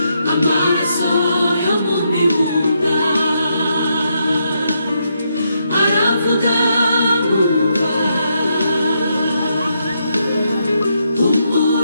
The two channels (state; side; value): inverted; both; correlation -0.79